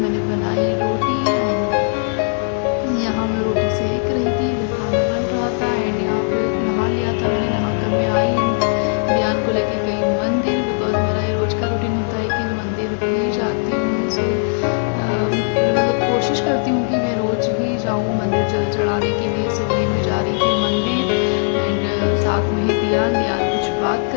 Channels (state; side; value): silent; right; digital silence